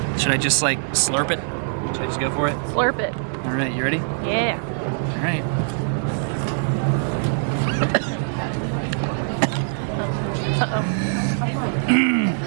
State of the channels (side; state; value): left; silent; digital silence